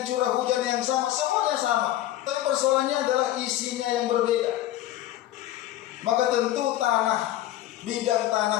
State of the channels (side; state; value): right; quieter; 14.0 dB